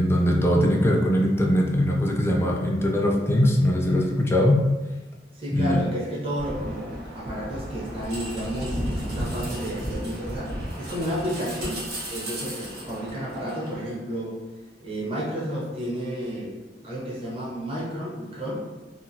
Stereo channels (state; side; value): normal; both; correlation 0.78